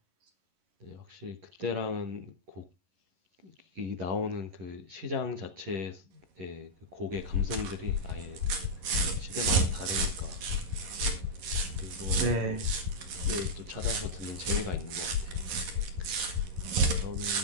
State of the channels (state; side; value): late; left; 11 ms